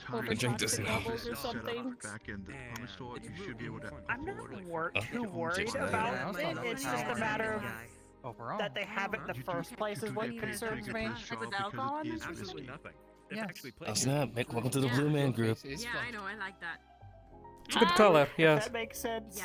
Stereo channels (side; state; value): both; identical; correlation 1.00